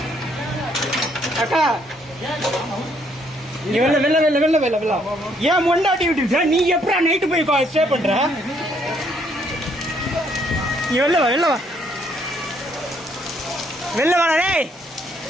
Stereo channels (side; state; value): both; normal; correlation 0.69